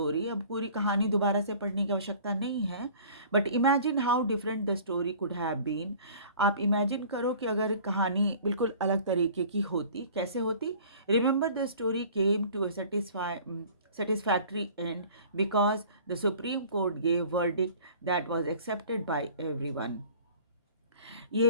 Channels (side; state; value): both; inverted; correlation -0.48